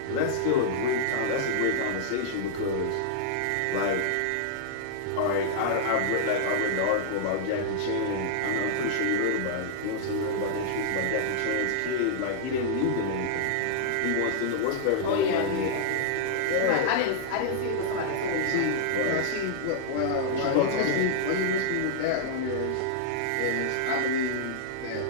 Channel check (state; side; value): different; both; correlation -0.02